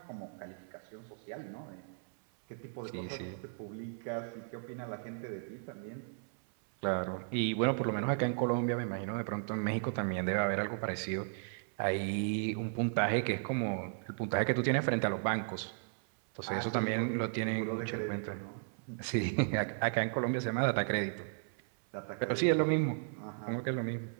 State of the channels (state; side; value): silent; left; 54 dB below the other